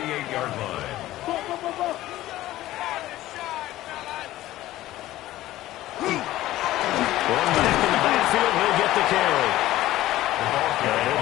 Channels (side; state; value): right; quieter; 15.3 dB